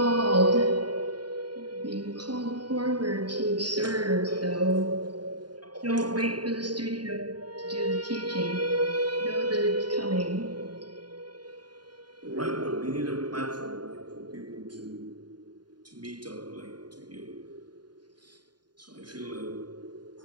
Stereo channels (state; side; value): late; left; 0.70 ms